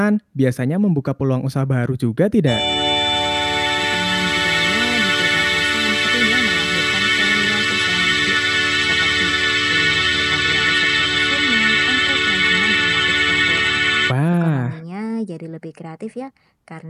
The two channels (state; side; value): identical; both; correlation 1.00